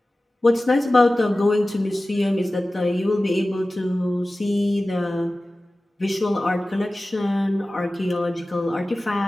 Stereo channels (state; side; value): normal; both; correlation 0.96